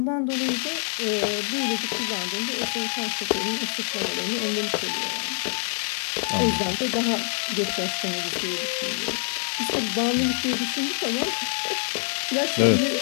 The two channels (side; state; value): right; silent; digital silence